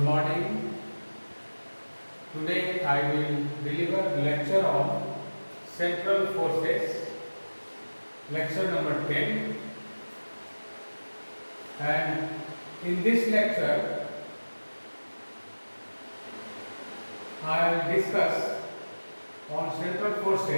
morning. Today I will deliver lecture on central forces, lecture number 10. And in this lecture, I will discuss on central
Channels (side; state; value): both; inverted; correlation -1.00